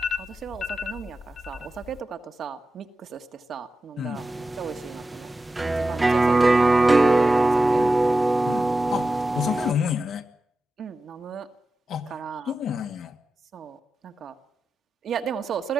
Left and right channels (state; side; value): normal; both; correlation 0.92